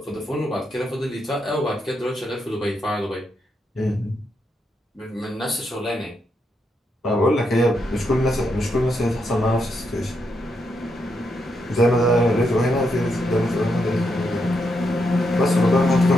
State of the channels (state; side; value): normal; both; correlation 0.81